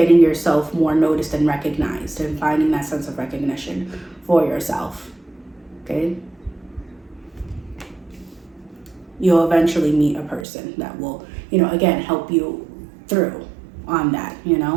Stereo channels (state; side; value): drops out; left; at 10.5 s